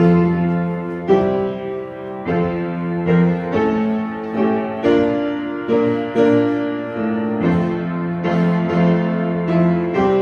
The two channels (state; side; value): identical; both; correlation 1.00